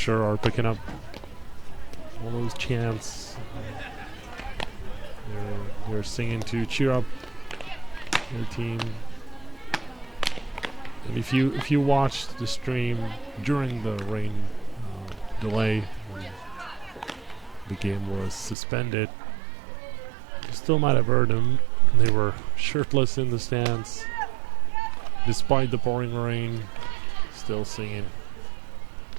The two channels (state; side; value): drops out; left; at 18.6 s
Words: are picking up all those chants. They're singing to cheer up their team. And if you watched the stream during the rain delay, when the game was suspended, you still might have heard them. They were shirtless in the stands, despite the pouring rain, still singing.